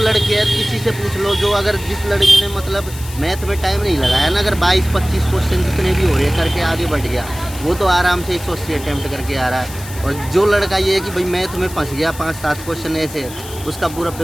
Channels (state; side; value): noise; left; hiss, 15 dB below the sound